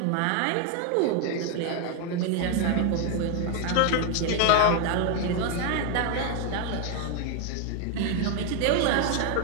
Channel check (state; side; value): different; both; correlation 0.01